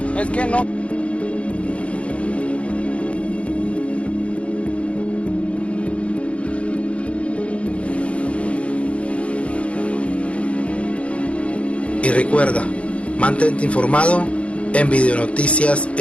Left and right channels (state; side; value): late; right; 0.062 ms